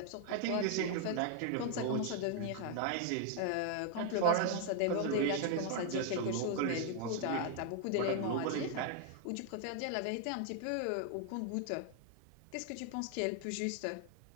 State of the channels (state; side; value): different; both; correlation 0.00